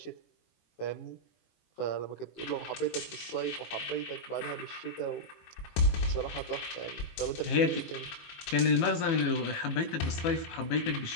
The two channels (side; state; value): right; late; 18 ms